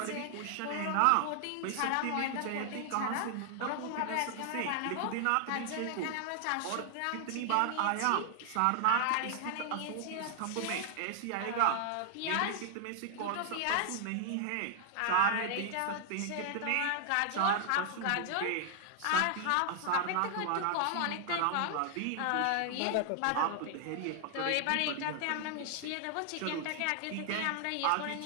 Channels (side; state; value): both; different; correlation 0.00